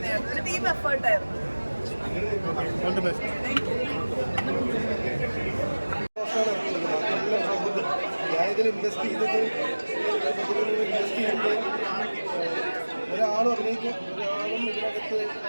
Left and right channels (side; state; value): both; inverted; correlation -1.00